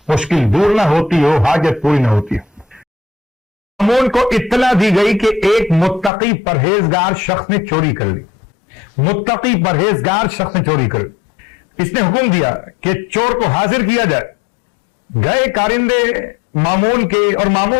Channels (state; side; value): drops out; right; at 6.1 s